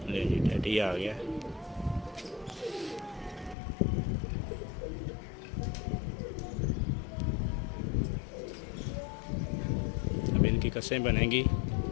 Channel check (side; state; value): right; drops out; at 3.6 s